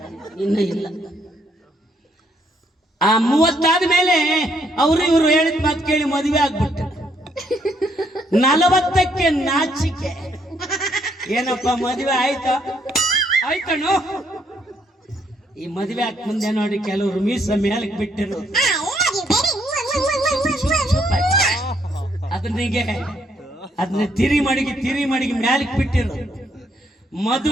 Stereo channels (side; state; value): both; normal; correlation 0.71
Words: ಇನ್ನ ಇಲ್ಲ. ಆ 30 ಆದ್ಮೇಲೆ ಅವರು ಇವರು ಹೇಳಿದ ಮಾತು ಕೇಳಿ ಮದುವೆ ಆಗ್ಬಿಟ್ಟು, 40ಕ್ಕೆ ನಾಚಿಕೆ, ಏನಪ್ಪ ಮದುವೆ ಆಯ್ತಾ? ಆಯ್ತಣ್ಣು. ಈ ಮದುವೆ ಆಗ ಮುಂದೆ ನೋಡಿ ಕೆಲವರು ಮೀಸ ಮೇಲಕ್ಕೆ ಬಿಟ್ಟಿರು, ಅದನ್ನ ತಿರಿ ಮಡಿಗೆ ಮ್ಯಾಲಕ್ಕೆ ಬಿಟ್ಟಿರು.